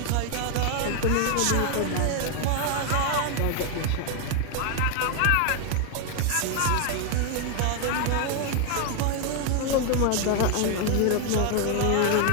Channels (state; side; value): different; both; correlation 0.01